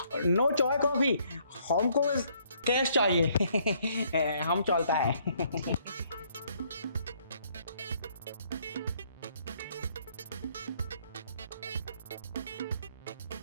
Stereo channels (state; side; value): inverted; both; correlation -0.67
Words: नो चाय कॉफी, हमको बस कैश चाहिए। हम चलता है।